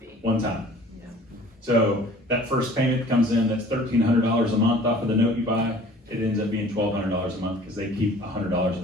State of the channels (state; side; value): normal; both; correlation 0.49